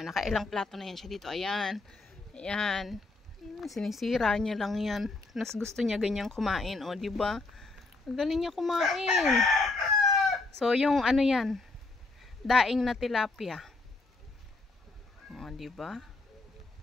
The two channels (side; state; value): right; quieter; 3.4 dB